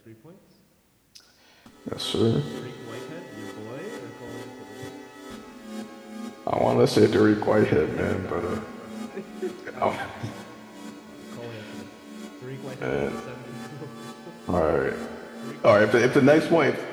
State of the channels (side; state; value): both; identical; correlation 1.00